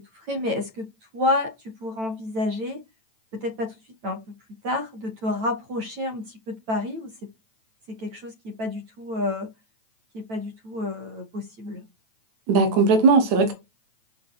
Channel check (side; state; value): left; late; 9.0 ms